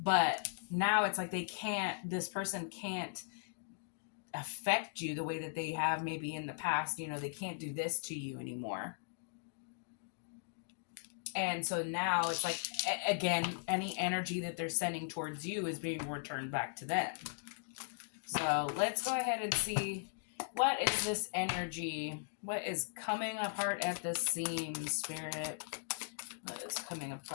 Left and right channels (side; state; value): right; silent; digital silence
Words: now it's like this person can't affect you the way that they have maybe in the past. They can't do this to you anymore. And so now it's like, again, any energy that they're sending towards you is being returned back to them. So let's go ahead and see, what is this energy? What is coming apart at the seams, Spirit? What is coming